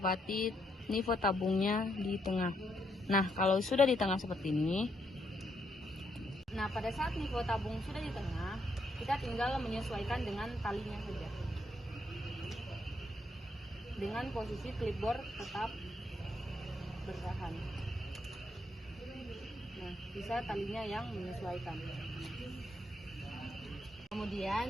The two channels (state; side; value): normal; both; correlation 0.76